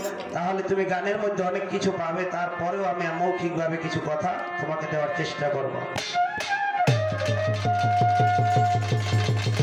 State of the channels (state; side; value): identical; both; correlation 1.00